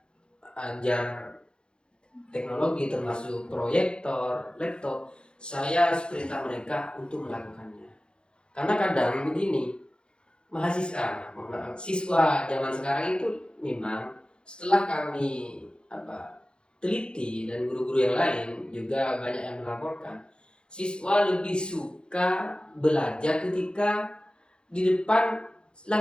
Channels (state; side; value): late; right; 0.052 ms